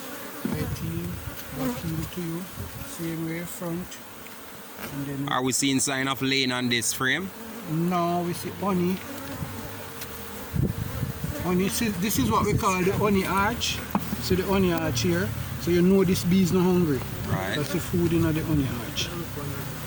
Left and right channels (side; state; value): both; identical; correlation 1.00